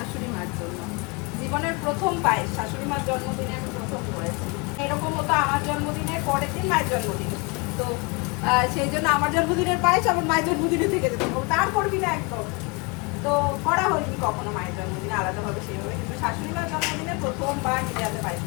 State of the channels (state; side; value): quieter; right; 27.7 dB